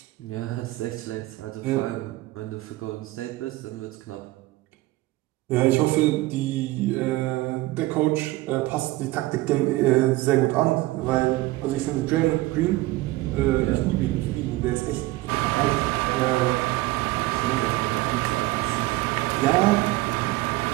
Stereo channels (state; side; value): quieter; left; 18.8 dB